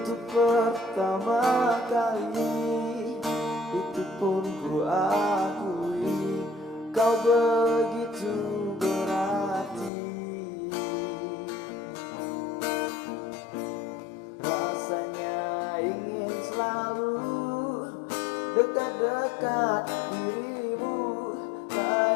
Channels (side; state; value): right; drops out; at 9.9 s